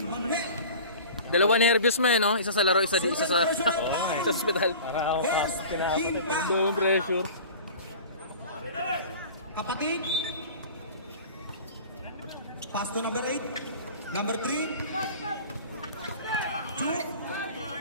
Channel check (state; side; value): inverted; both; correlation -0.39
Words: Manuel. Dalawa nervous mo eh, no? Isa sa laro, isa sa hospital. First team foul. Doon pressure. Kapatid. Pass to number 8. Number 3.